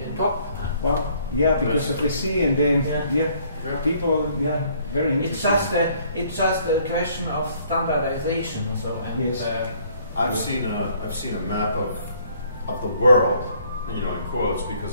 top. Wow, yeah, because of the sea, and then people, very interesting. It's just a question of standardization. So I've seen a map of the world, in quotes,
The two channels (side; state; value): both; inverted; correlation -0.62